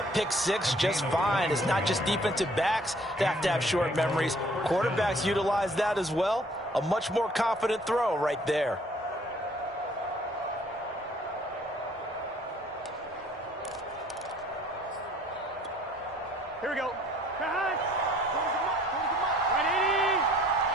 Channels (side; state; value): both; normal; correlation 0.58